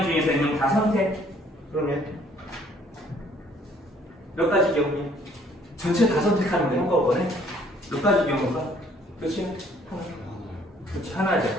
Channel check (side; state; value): both; normal; correlation 0.61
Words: 중에서 N명 다 선택. 그러면 몇 가지 경우냐? 전체 다 선택하는 게 한꺼번에 몇 가지 경우가? 그렇지? 하나. 그렇지, 하나죠.